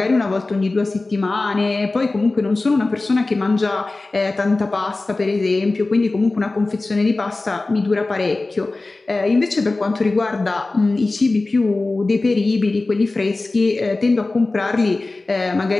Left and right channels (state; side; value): quieter; right; 3.2 dB